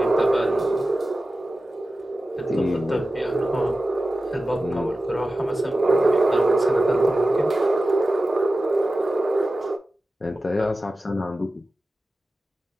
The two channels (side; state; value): both; normal; correlation 0.94